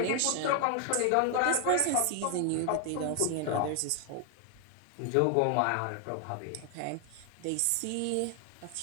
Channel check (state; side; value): different; both; correlation 0.00